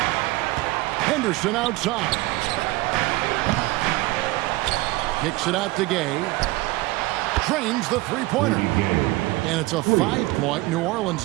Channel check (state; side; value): quieter; left; 20.2 dB